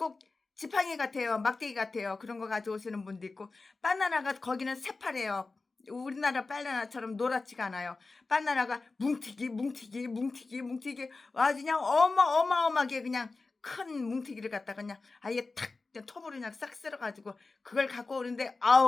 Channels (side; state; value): right; quieter; 3.8 dB